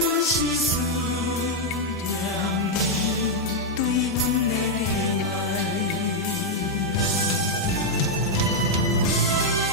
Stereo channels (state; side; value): normal; both; correlation -0.01